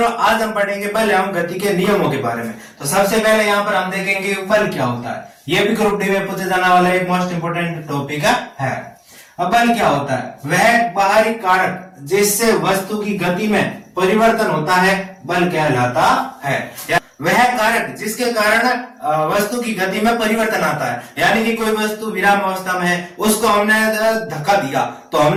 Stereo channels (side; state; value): both; identical; correlation 1.00